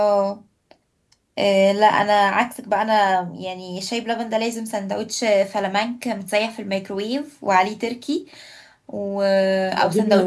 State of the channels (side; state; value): both; identical; correlation 1.00